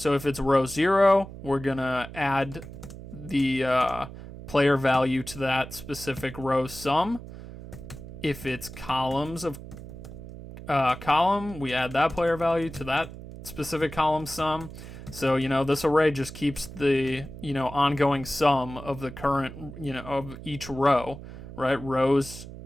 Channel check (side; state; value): right; noise; hum, 13 dB below the sound